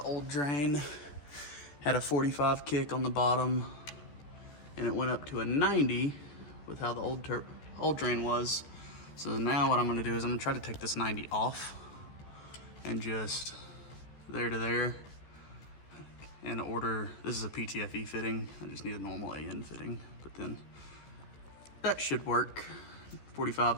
drain, had a 45 kick on the bottom, and it went up to a 90 with how the old drain was. So now what I'm gonna do is I'm gonna try to take this 90 off and just there to there, and order, this is a PTFE fitting. I just need a normal AN fitting, but then that should work.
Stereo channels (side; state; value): right; late; 14 ms